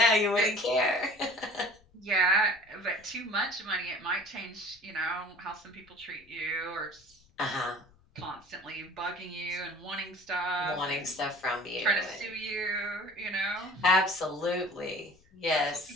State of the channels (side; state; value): left; noise; rumble, 30 dB below the sound